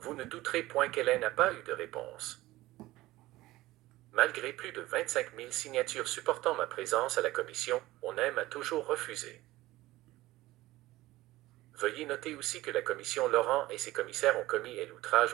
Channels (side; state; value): left; quieter; 17.6 dB